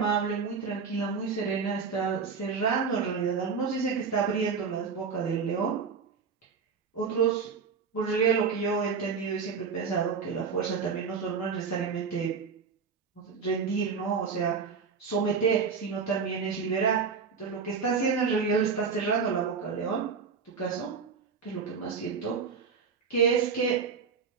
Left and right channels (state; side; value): quieter; left; 5.6 dB